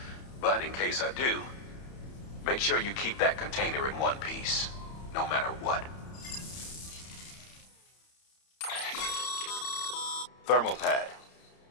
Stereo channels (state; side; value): late; right; 31 ms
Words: but in case I do, make sure you keep that container in one piece, no matter what. Thermal pad.